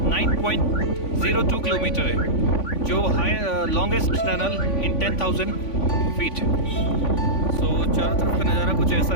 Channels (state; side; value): late; right; 3.5 ms